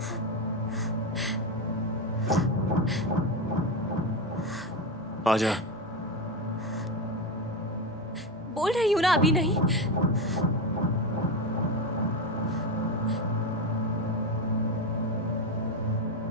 आजा। बोल रही हूँ ना, अभी नहीं।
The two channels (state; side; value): normal; both; correlation 0.14